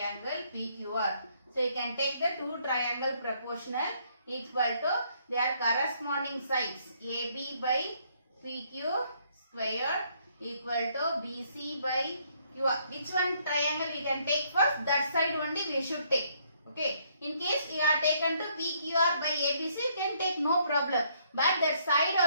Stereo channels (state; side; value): inverted; both; correlation -0.69